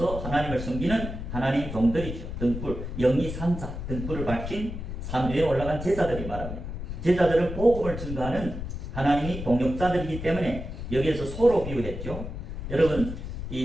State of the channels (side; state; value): left; noise; rumble, 7 dB below the sound